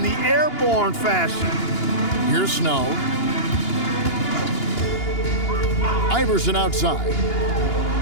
the airborne fashion. Here's Snow. Iverson outside.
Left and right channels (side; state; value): right; late; 2.8 ms